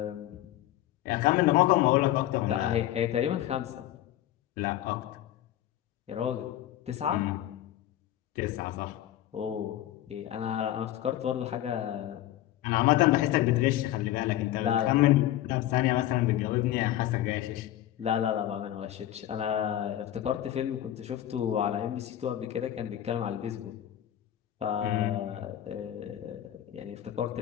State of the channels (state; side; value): quieter; right; 13.1 dB